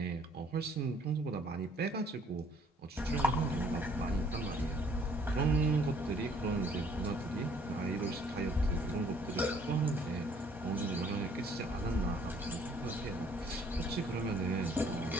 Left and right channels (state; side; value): normal; both; correlation 0.60